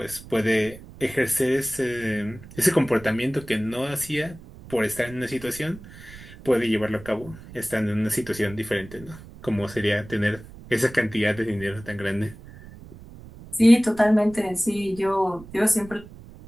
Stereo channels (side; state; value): right; noise; rumble, 18 dB below the sound